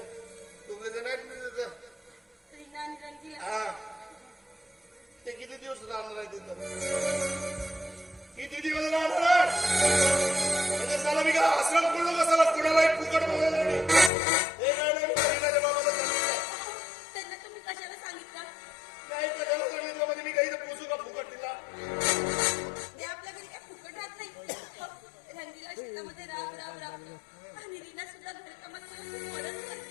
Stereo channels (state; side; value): drops out; right; at 14.1 s